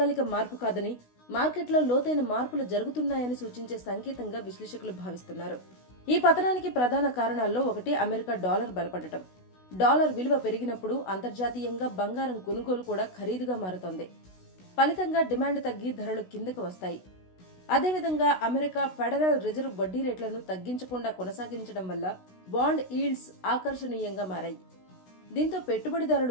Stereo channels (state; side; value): late; right; 16 ms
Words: మార్పు కాదని, మార్కెట్లో లోతైన మార్పులు జరుగుతున్నాయని సూచించే సంకేతంగా విశ్లేషకులు భావిస్తున్నారు. ఈ పతనానికి ప్రధాన కారణాల్లో ఒకటి అమెరికా డాలర్ బలపడటం. డాలర్ విలువ పెరిగినప్పుడు అంతర్జాతీయంగా బంగారం కొనుగోలు కూడా ఖరీదుగా మారుతోంది. ఫలితంగా డిమాండ్ తగ్గి ధరలు కిందకు వస్తాయి. అదేవిధంగా అమెరికా ఫెడరల్ రిజర్వ్ వడ్డీ రేట్లను తగ్గించకుండా కొనసాగించడం వల్ల బాండ్ ఈల్డ్స్ ఆకర్షణీయంగా మారాయి. దీంతో